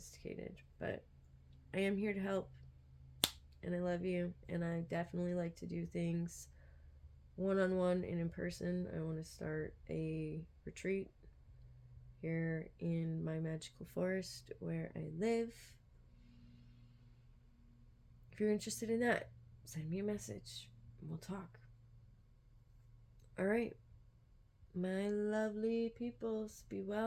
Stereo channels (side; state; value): both; identical; correlation 1.00